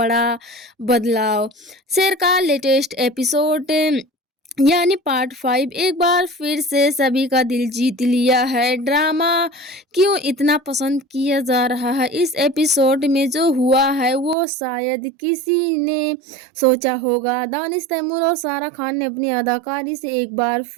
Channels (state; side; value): drops out; left; at 14.4 s